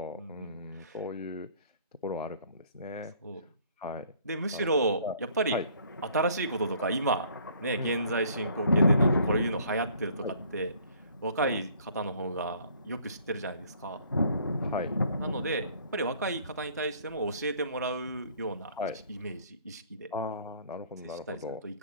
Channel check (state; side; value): inverted; both; correlation -0.58